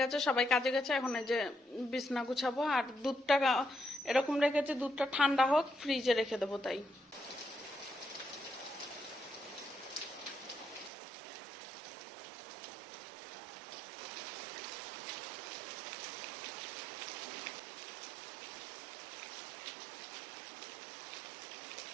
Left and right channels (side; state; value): left; drops out; at 10.9 s